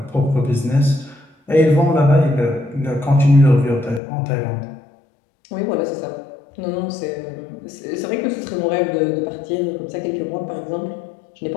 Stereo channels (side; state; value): right; drops out; at 4.0 s